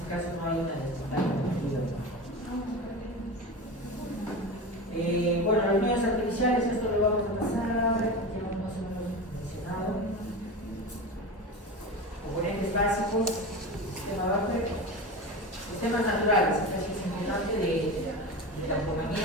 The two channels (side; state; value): both; normal; correlation 0.26